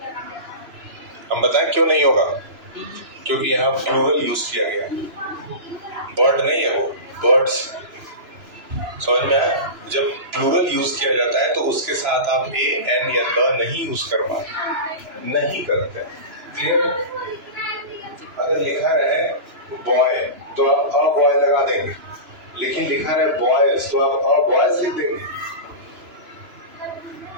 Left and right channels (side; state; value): left; late; 3.0 ms